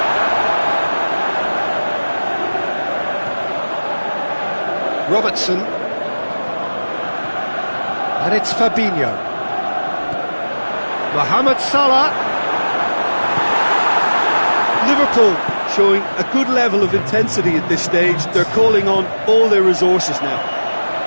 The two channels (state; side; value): inverted; both; correlation -1.00